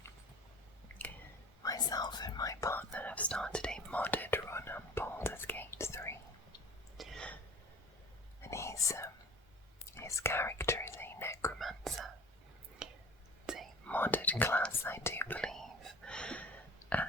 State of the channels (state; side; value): normal; both; correlation 0.42